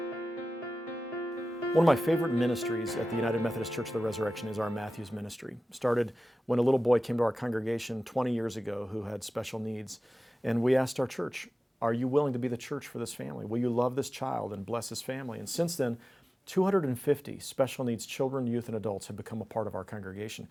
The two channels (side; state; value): both; normal; correlation 0.95